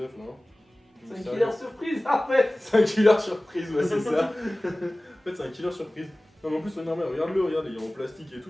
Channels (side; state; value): both; normal; correlation 0.98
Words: non? C'est un killer surprise en fait. C'est un killer surprise, ouais, c'est ça. En fait, c'est un killer surprise. Non, mais en plus, regarde, regarde, il est en plastique et